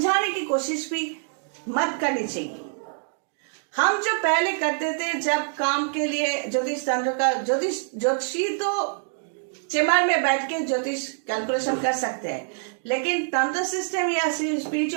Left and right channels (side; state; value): left; silent; digital silence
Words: की कोशिश भी मत करनी चाहिए। हम जो पहले करते थे, जब काम के लिए ज्योतिष तंत्र का, ज्योतिषी तो चेम्बर में बैठ के ज्योतिष कैलकुलेशन कर सकते हैं, लेकिन तंत्र सिस्टम या